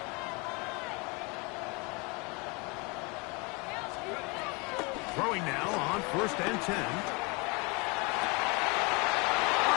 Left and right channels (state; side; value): quieter; right; 29.2 dB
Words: Throwing now on 1st and 10.